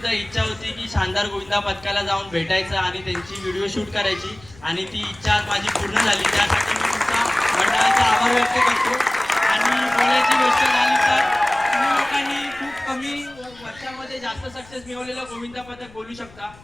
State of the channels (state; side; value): noise; left; rumble, 24 dB below the sound